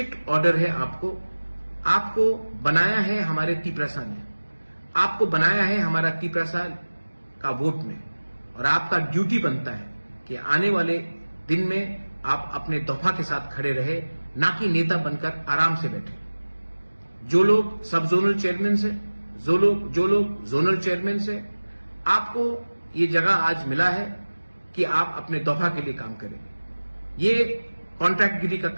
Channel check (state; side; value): inverted; both; correlation -1.00